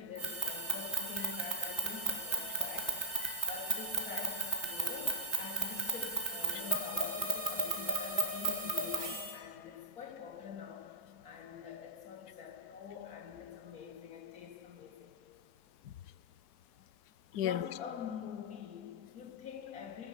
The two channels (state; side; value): late; right; 3.9 ms